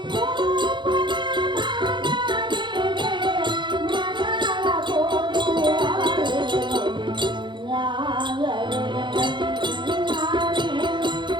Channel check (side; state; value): left; late; 0.23 ms